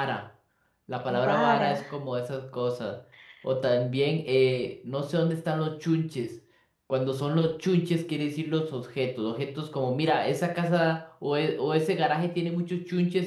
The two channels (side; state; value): both; identical; correlation 1.00